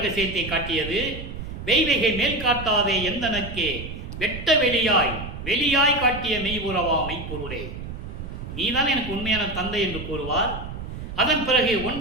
காட்டியது. வெய்வகை மேல் காட்டாதே எந்தனக்கே வெட்ட வெளியாய் காட்டிய மெய்புறவா மெய்ப்பொருளே, நீதான் எனக்கு உண்மையான தந்தை என்று கூறுவார். அதன் பிறகு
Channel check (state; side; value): noise; right; rumble, 9 dB below the sound